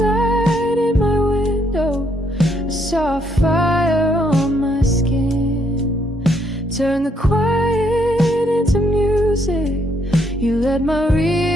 in my window. I saw a fire on my skin. Turn the quiet into music. You let my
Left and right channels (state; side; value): normal; both; correlation 0.72